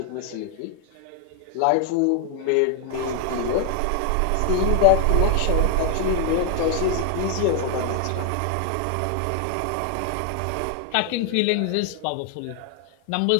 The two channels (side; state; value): both; different; correlation 0.00